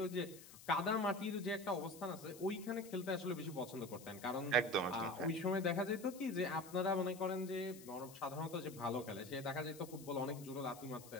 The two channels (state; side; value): noise; left; hiss, 17 dB below the sound